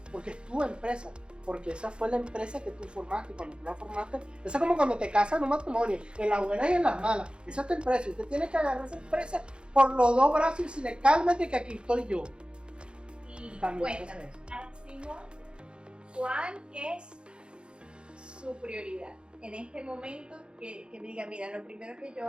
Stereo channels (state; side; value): late; left; 0.054 ms